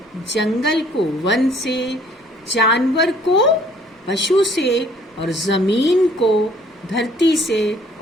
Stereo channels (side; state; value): both; normal; correlation 0.59